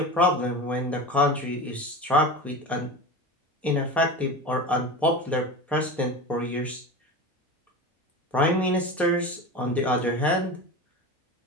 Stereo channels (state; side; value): normal; both; correlation 0.28